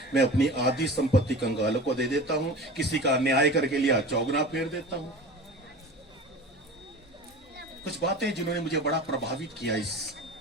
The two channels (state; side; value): normal; both; correlation 0.35